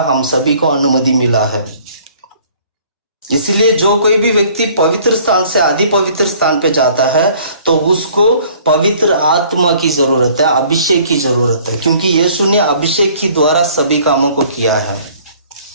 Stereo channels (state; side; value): inverted; both; correlation -0.55